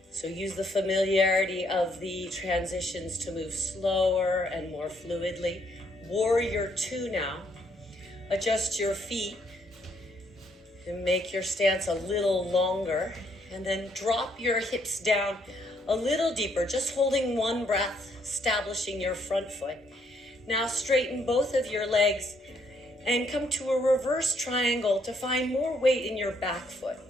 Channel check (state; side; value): normal; both; correlation 0.71